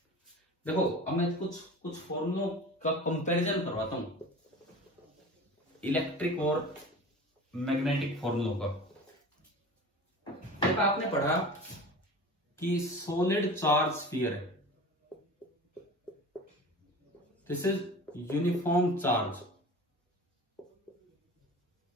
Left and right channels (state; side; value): normal; both; correlation 0.37